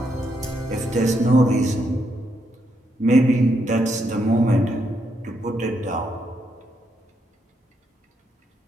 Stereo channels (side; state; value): both; normal; correlation 0.78